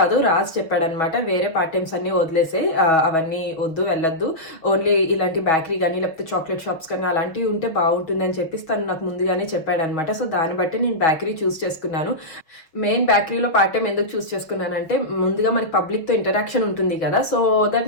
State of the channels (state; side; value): late; right; 6.2 ms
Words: రాజ్ చెప్పాడనమాట. వేరే పార్ట్ టైమ్స్ అన్ని వదిలేసే, అవన్నీ వద్దు, వెళ్ళొద్దు, ఓన్లీ ఇలాంటి బేకరీ కానీ లేకపోతే చాక్లెట్ షాప్స్ కానీ అలాంటివి ఉంటే బాగుంటుంది అని చెప్పి తను నాకు ముందుగానే చెప్పాడనమాట. సో దాన్ని బట్టి నేను బేకరీ చూస్ చేసుకున్నాను. మెయిన్ బేకరీలో పార్ట్ టైం ఎందుకు చూస్ చేసుకున్నానంటే, ముందుగా మనకి పబ్లిక్ తో ఇంటరాక్షన్ ఉంటుంది కదా, సో దట్